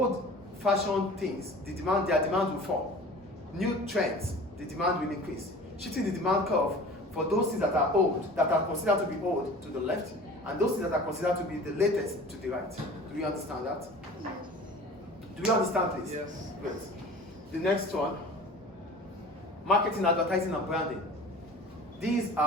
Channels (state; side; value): normal; both; correlation 0.41